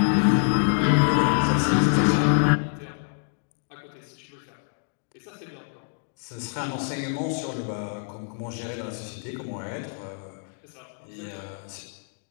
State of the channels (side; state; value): right; silent; 61 dB below the other